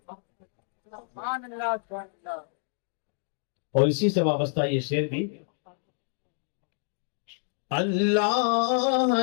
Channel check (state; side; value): silent; right; 59 dB below the other